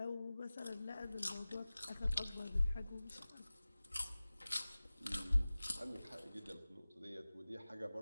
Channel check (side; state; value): both; inverted; correlation -0.97